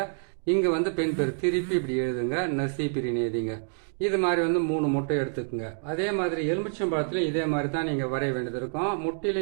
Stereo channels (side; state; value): left; silent; digital silence